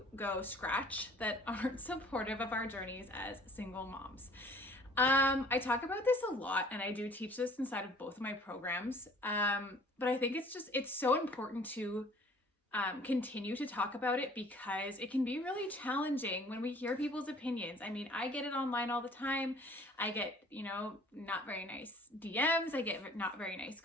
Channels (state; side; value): normal; both; correlation 0.53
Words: go scratch that aren't supportive of our journeys as single moms. I talk about this a lot, and I do teach this inside of both of my programs. But I think it's so important to continue to talk about it because it can be really challenging when we hear people's opinions. I mean, I get it online all the time. I get, not very nice DMs. I get not very nice